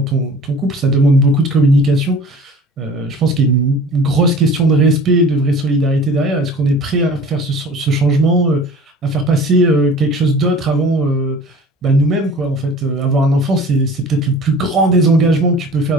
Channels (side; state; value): both; normal; correlation 0.44